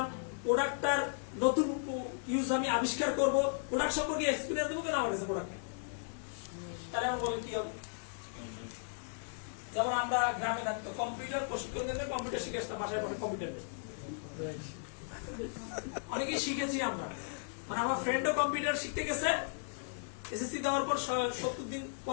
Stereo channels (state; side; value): silent; right; 54 dB below the other